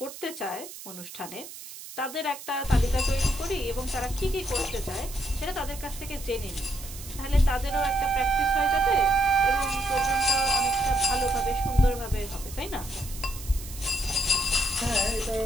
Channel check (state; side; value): noise; right; hiss, 13 dB below the sound